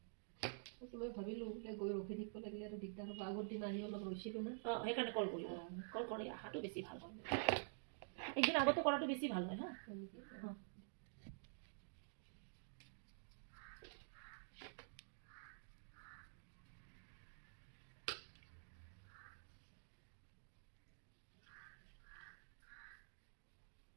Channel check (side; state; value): left; silent; digital silence